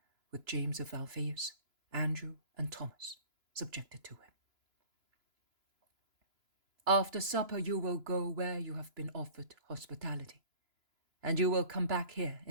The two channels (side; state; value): left; late; 2.9 ms